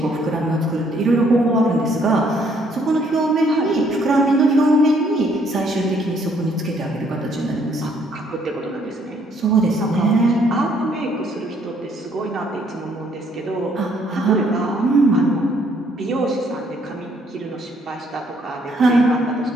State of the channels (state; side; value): normal; both; correlation 0.67